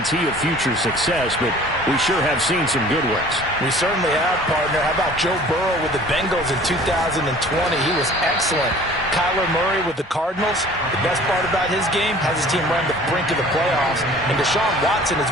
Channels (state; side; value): normal; both; correlation 0.48